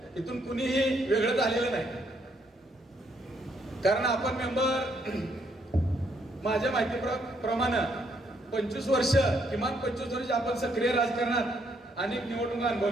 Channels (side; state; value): both; normal; correlation 0.72